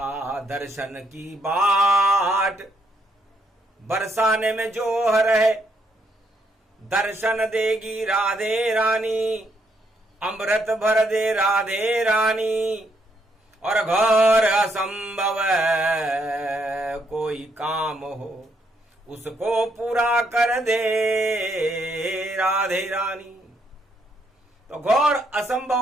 दर्शन की बाट बरसाने में जोह रहे। दर्शन देगी राधे रानी, अमृत भर दे राधे रानी, और घोर असंभव कोई काम हो उसको पूरा कर दे राधे रानी। तो घोर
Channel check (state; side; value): normal; both; correlation 0.74